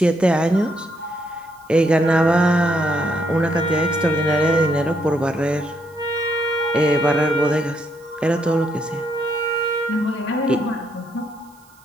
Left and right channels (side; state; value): right; noise; hiss, 30 dB below the sound